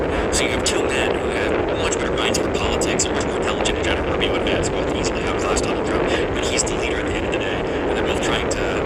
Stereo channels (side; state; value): both; identical; correlation 1.00